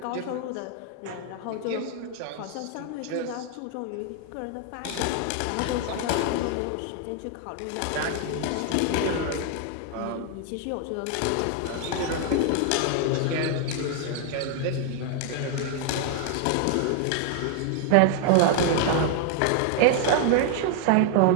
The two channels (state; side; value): different; both; correlation 0.00